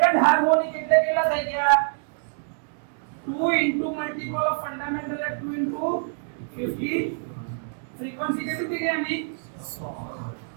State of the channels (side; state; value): left; silent; digital silence